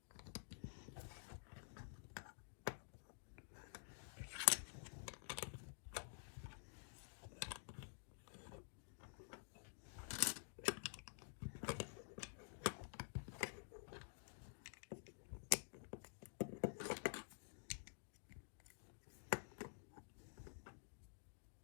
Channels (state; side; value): silent; right; digital silence